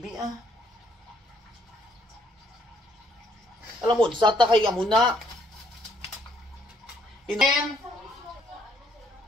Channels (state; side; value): normal; both; correlation 0.67